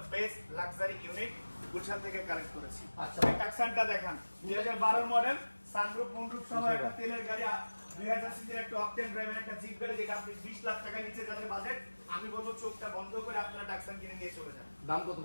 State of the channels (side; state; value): both; inverted; correlation -1.00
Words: best luxury unit Gulshan থেকে কালেক্ট করেছি। আচ্ছা এই টাকসানটা দেখেন 2012 মডেল সানরুফ মুনরুফ সহ একটা তেলের গাড়ি 2000 সিসির একটা অকটেন ড্রাইভের একটা জিপ গাড়ি যেটা আপনি 20 লাখ টাকা নিচে যাদের বাজেট আমি বলবো চোখটা বন্ধ করে আপনারা টাকসান কিনে নিয়ে চলে যান। দাম কত